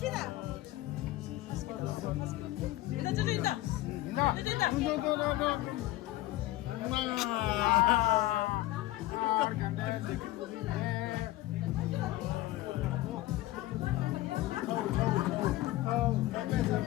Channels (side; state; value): right; quieter; 16.8 dB